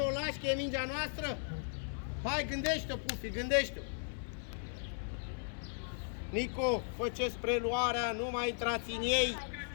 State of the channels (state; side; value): silent; right; 53 dB below the other